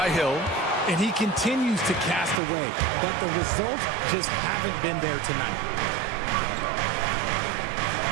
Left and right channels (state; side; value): drops out; left; at 2.4 s